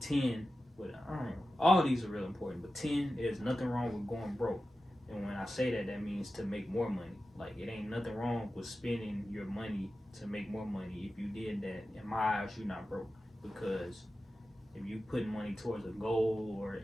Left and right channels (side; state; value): both; normal; correlation 0.93